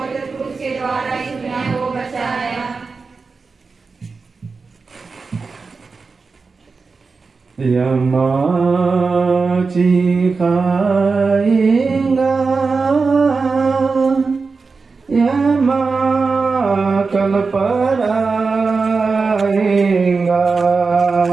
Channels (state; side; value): quieter; left; 4.5 dB